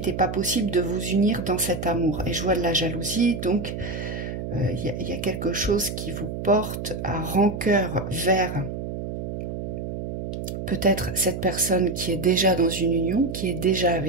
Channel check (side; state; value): right; noise; hum, 5 dB below the sound